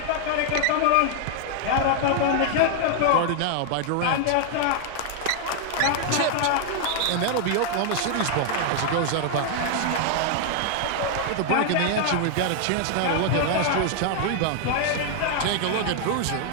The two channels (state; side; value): different; both; correlation 0.00